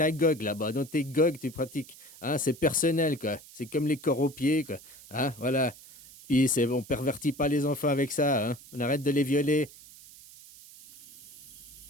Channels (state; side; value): noise; right; hiss, 20 dB below the sound